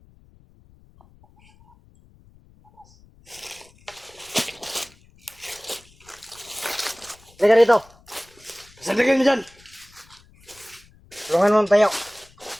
Halika rito. pasandagan mo dyan. Tulungan mo tayo.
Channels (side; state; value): left; noise; rumble, 28 dB below the sound